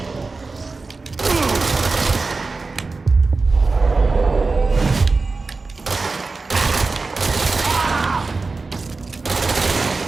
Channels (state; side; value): quieter; left; 3.9 dB